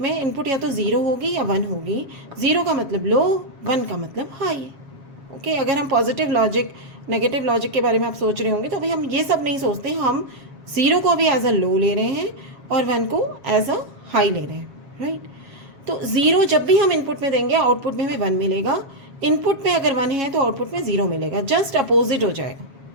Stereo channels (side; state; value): left; late; 7.3 ms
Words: में इनपुट या तो 0 होगी या 1 होगी। 0 का मतलब लो, 1 का मतलब हाई, ओके। अगर हम पॉजिटिव लॉजिक नेगेटिव लॉजिक के बारे में आप सोच रहे होंगे तो अभी हम ये सब नहीं सोचते, हम 0 को भी एज अ लो ले रहे हैं और 1 को एज अ हाई ले रहे हैं, राइट। तो 0 जब भी हम इनपुट में देंगे आउटपुट में हमें 1 मिलेगा। इनपुट में अगर 1 है तो आउटपुट में 0 मिलेगा, जस्ट अपोजिट हो जाएगा,